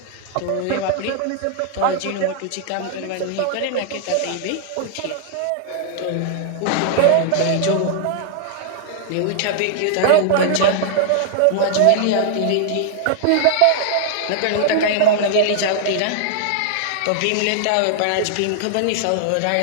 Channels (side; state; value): both; different; correlation -0.01